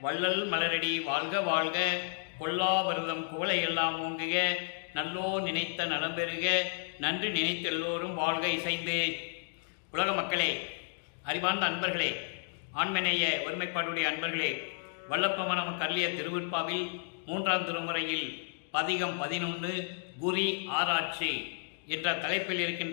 வள்ளல் மலரடி வாழ்க வாழ்க, கொல்லா வருதம் குவளை எல்லாம் ஓங்குக, நல்லோ நினைத்த நலம் பெறுக, நன்றி நினைத்த எல்லோரும் வாழ்க இசைந்து. உலக மக்களே, அறிவார்ந்த அன்பர்களே, ஆண்மநேய ஒருமைப்பாடுடைய அன்பர்களே, வல்லப்பமான நமக்கு அருளிய திருவிற்பாவில் 3ஆம் திருமுறையில் பதிகம் 11 குறி ஆராய்ச்சி என்ற தலைப்பில்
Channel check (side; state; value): right; silent; digital silence